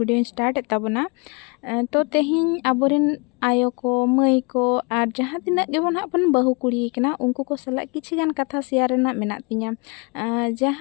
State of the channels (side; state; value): right; quieter; 31.1 dB